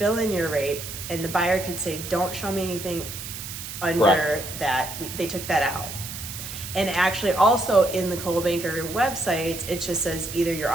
in your rate, and the buyer could say, don't show me anything under that. They took that out. And actually also in the Coldwell Banker websites, it just says either you're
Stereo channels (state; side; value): noise; right; hiss, 9 dB below the sound